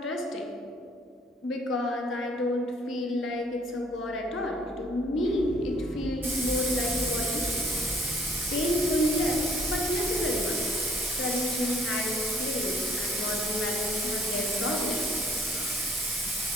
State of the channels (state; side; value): normal; both; correlation 0.60